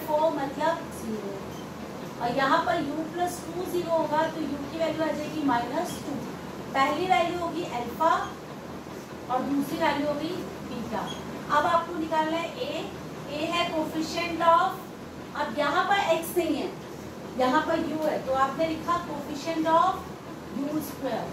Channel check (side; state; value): both; identical; correlation 1.00